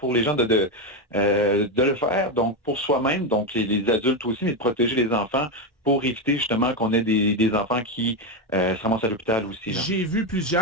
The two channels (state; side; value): normal; both; correlation 0.10